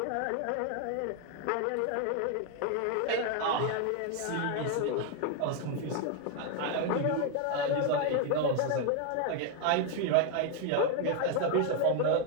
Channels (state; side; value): different; both; correlation 0.01